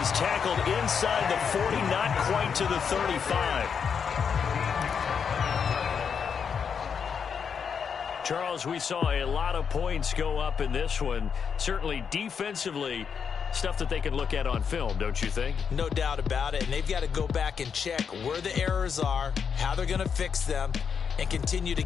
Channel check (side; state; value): right; quieter; 6.7 dB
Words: tackled inside the 40, not quite to the 35. Charles, we saw a lot of points go up in this one. Certainly defensively, stuff that they can look at on film, don't you think? No doubt about it. And they've got to go back and check where the errors are, how they're going to fix them, and continue to